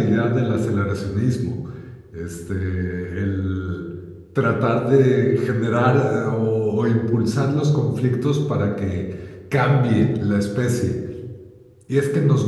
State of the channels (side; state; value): both; identical; correlation 1.00